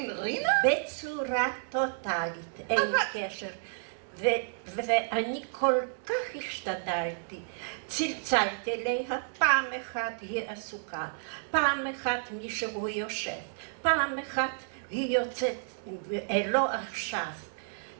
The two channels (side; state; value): left; silent; digital silence